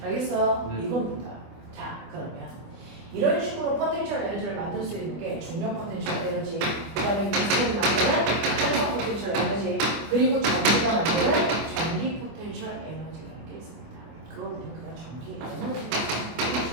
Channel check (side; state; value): left; late; 24 ms